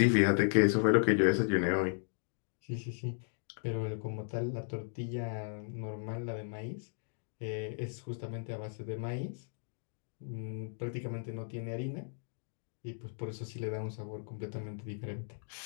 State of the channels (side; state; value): right; silent; digital silence